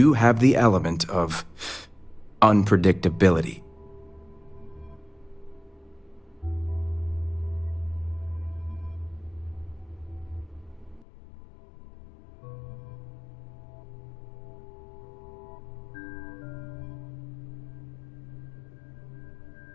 have the element of unpredictability.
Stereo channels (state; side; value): drops out; right; at 11.1 s